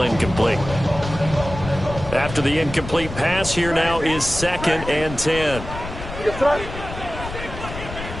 incomplete. After the incomplete pass, here now is 2nd and 10.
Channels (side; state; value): left; noise; rumble, 10 dB below the sound